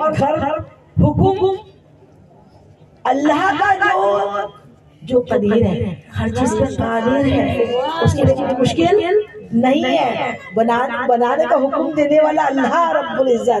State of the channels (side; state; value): both; identical; correlation 1.00